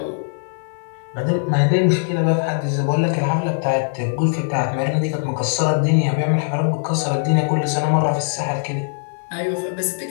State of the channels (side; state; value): right; silent; digital silence